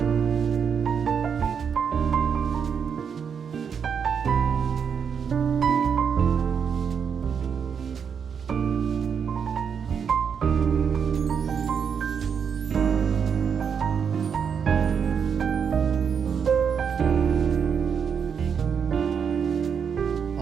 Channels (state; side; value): quieter; left; 7.0 dB